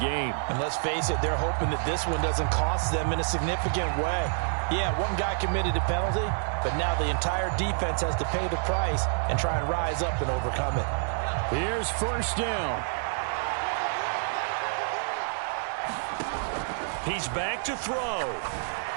And let's face it, they're hoping that this one doesn't cost them in a significant way. Yeah, one guy committed a penalty, but now the entire defense has to pay the price and try and rise up and overcome it. Here's 1st down. He's back to throw.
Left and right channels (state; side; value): silent; left; digital silence